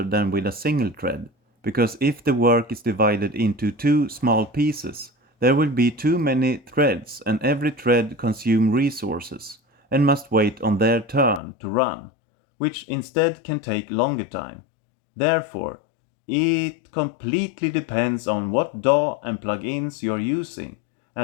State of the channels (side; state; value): right; drops out; at 11.4 s